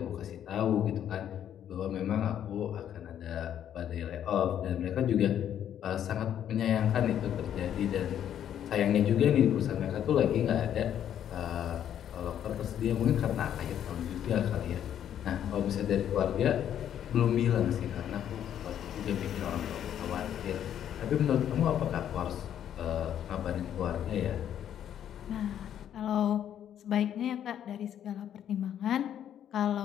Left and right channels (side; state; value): right; quieter; 10.0 dB